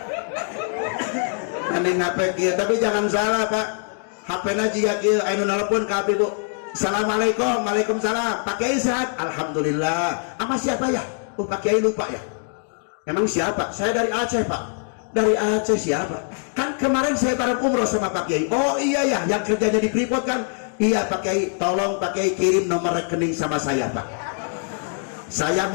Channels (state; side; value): silent; right; 56 dB below the other